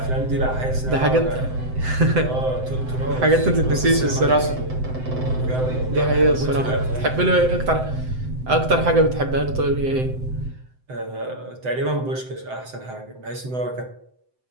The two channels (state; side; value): late; left; 7.8 ms